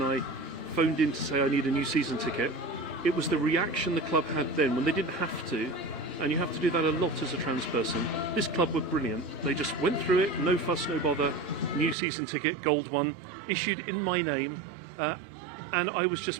I phoned in to say I need a new season ticket, it was the reaction the club had then when they didn't have to, and you have to do that a lot as a trans person. This club were brilliant. They just went through it, no fuss, no bother, new season ticket, gold one, issued in my name, and I was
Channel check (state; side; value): drops out; left; at 12.0 s